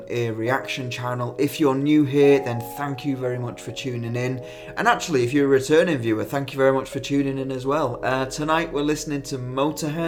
Ear Reaction channel. If you're new here, then thank you very much for tuning in. And actually, if you're a returning viewer, thank you very much for tuning in as well. Tonight we're listening to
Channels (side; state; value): both; identical; correlation 1.00